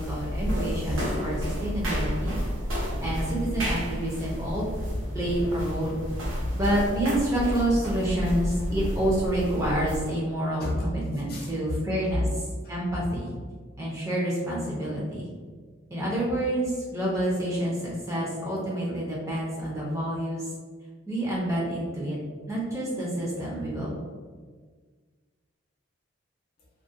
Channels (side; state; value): both; normal; correlation 0.65